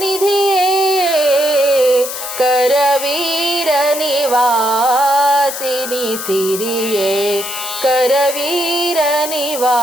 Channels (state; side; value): noise; left; hiss, 7 dB below the sound